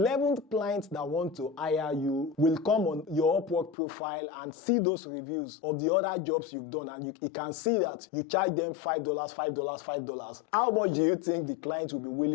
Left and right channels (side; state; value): right; drops out; at 3.8 s